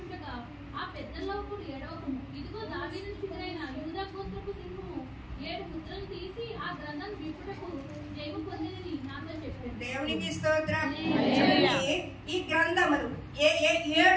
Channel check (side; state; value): both; identical; correlation 1.00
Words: ఆ పెద్దల్లో ఒకడు ఏడవకము, ఇదిగో దావీదు చిగురైన యూదా గోత్రపు సింహము 7 ముద్రలు తీసి ఆ గ్రంథం విప్పుటకు జయము పొందినని నాతో చెప్పాడు. దేవునికి స్తోత్రం. ఈ గ్రంథములు